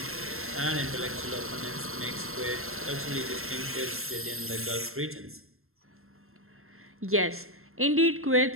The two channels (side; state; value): left; late; 0.62 ms